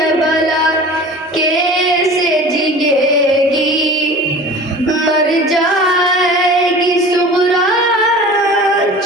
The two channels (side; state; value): both; normal; correlation 0.39